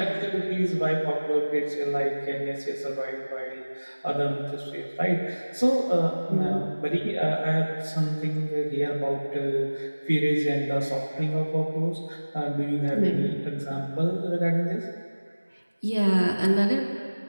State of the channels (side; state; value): both; inverted; correlation -1.00